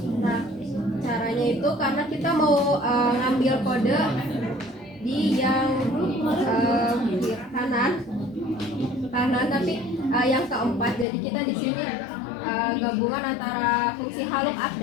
Nah caranya itu karena kita mau ngambil kode di yang kanan tapi yang keempat, jadi kita di sini gabungan antara fungsi HLOOKUP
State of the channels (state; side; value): drops out; right; at 11.1 s